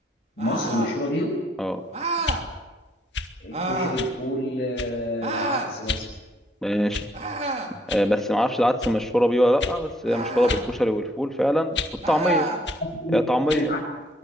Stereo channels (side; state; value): both; normal; correlation 0.67